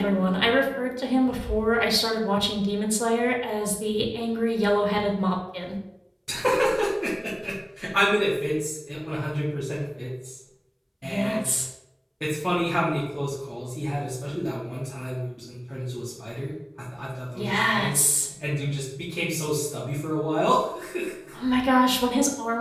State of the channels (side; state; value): both; identical; correlation 1.00